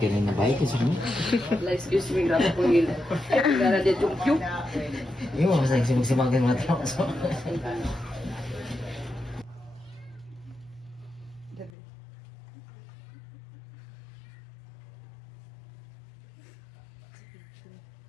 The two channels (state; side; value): drops out; right; at 11.7 s